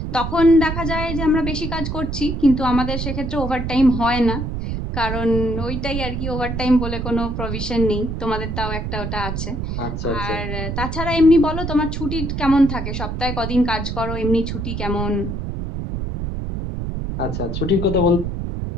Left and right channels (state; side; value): noise; right; rumble, 4 dB below the sound